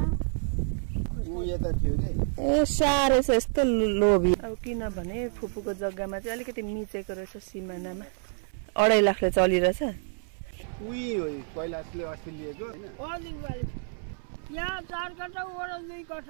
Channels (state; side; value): silent; left; 59 dB below the other